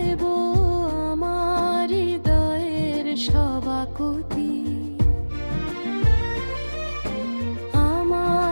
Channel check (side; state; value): both; inverted; correlation -1.00